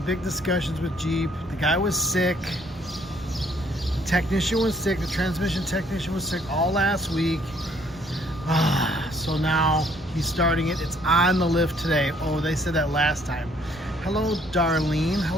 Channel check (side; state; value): both; normal; correlation 0.63